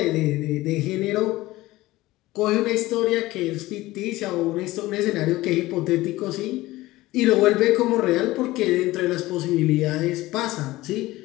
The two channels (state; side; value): quieter; right; 18.1 dB